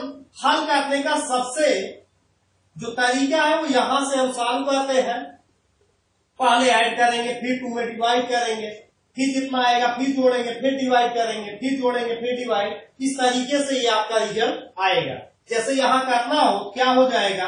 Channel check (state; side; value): identical; both; correlation 1.00